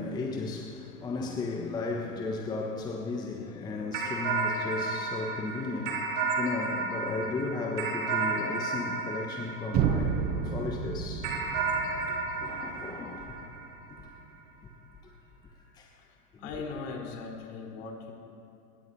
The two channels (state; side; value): normal; both; correlation 0.19